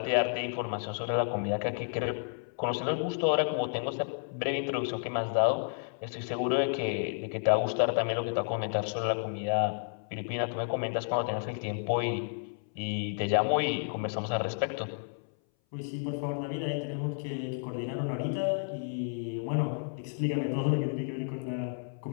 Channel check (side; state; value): right; silent; 57 dB below the other